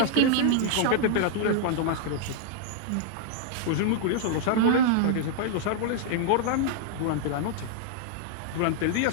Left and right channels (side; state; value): both; different; correlation -0.01